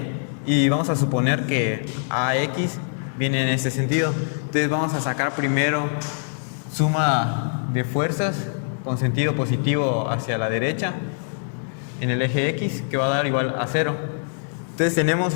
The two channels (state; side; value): silent; right; 62 dB below the other